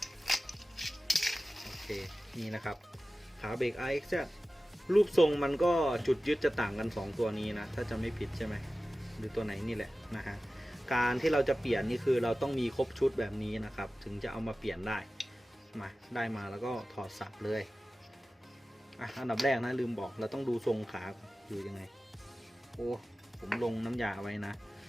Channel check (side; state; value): both; normal; correlation 0.95